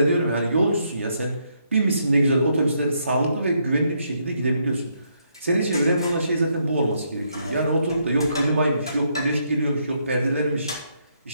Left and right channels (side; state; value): both; inverted; correlation -0.75